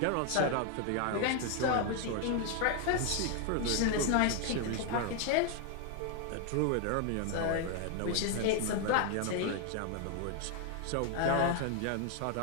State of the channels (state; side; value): different; both; correlation 0.00